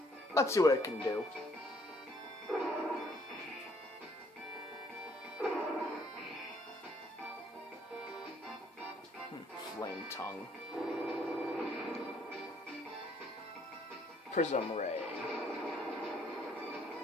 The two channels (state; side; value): normal; both; correlation 0.65